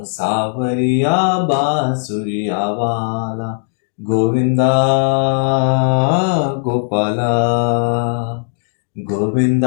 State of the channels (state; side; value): silent; right; digital silence